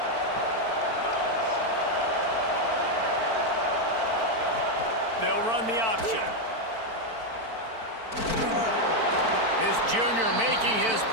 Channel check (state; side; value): late; left; 4.5 ms